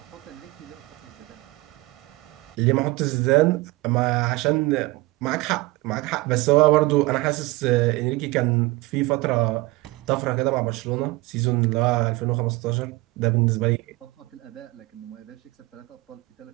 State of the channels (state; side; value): quieter; left; 21.1 dB